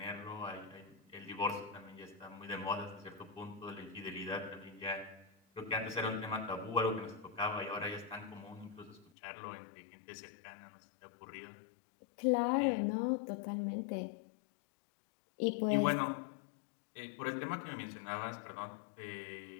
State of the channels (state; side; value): drops out; right; at 9.1 s